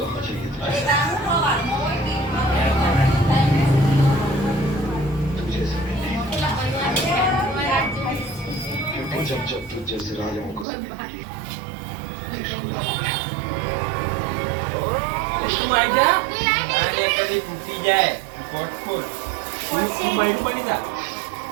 जब जब तू जैसे राजाओं को તું આઈ જા અને કદી તૂટી જાય કોટ ખોલ તું બૈરું બની જા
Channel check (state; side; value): drops out; left; at 10.7 s